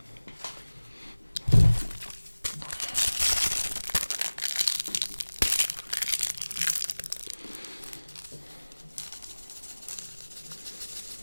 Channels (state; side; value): inverted; both; correlation -1.00